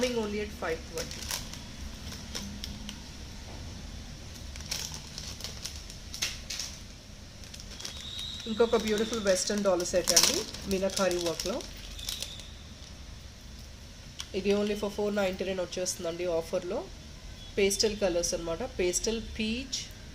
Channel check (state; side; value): identical; both; correlation 1.00